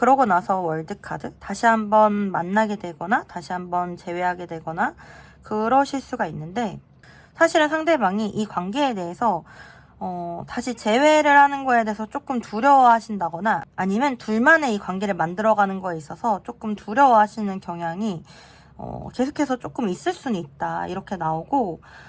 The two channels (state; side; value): identical; both; correlation 1.00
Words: 나서 월드카드 다시 한번 만나게 되거나 다시 한번 재회하게 되거나 그러실 수가 있는데 사실은 상대방이 이 관계에 대해서 다시 재회를 하는 거에 대해서 조금 두려워하신다거나 아니면 둘만의 이 관계를 만들어가는 거에 있어서 조금 두려워하시는 경향이 계속해서 조금 있을 수는 있다 이렇게 나오고